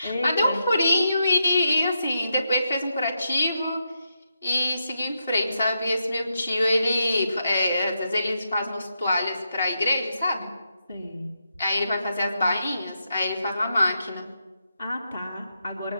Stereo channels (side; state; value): both; inverted; correlation -0.84